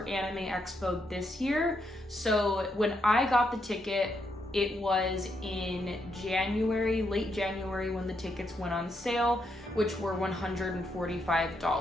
Anime Expo this year. So when I got the ticket, it was in January, late January, when the tickets went on sale, which were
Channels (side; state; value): both; normal; correlation 0.79